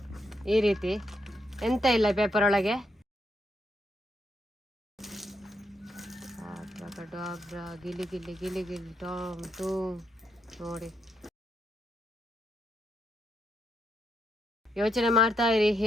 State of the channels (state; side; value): normal; both; correlation 0.79